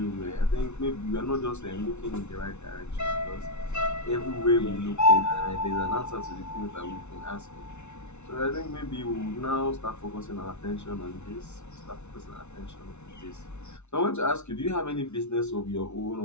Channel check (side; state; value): right; late; 0.82 ms